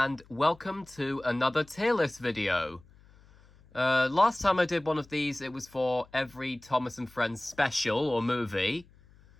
welcome to another tier list video. Last time I did one of these, it was for every Thomas and Friends special or movie.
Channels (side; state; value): left; noise; hum, 26 dB below the sound